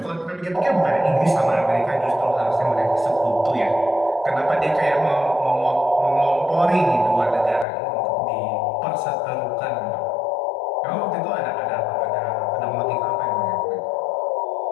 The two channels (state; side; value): drops out; right; at 7.7 s